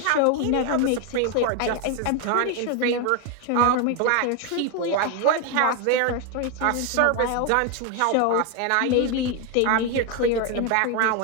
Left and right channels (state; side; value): different; both; correlation 0.01